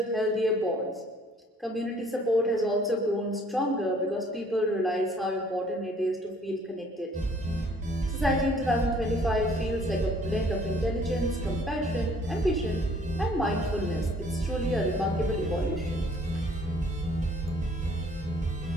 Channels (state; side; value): normal; both; correlation 0.58